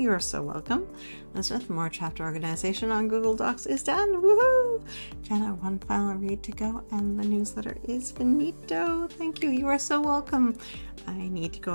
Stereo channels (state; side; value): inverted; both; correlation -1.00